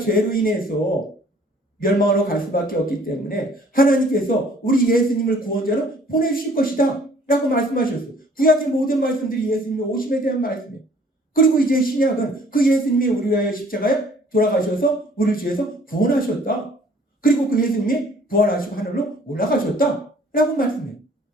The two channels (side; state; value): both; normal; correlation 0.56